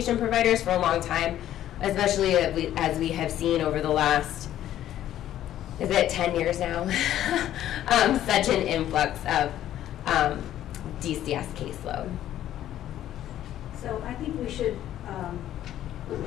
providers for a long time, especially as we have seen over the last, is it 10 years now? Such an influx of DCS caseload. So I think we should,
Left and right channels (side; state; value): right; quieter; 12.2 dB